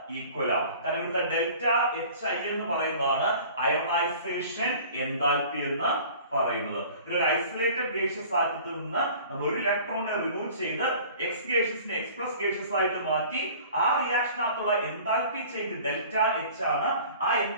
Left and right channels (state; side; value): inverted; both; correlation -0.46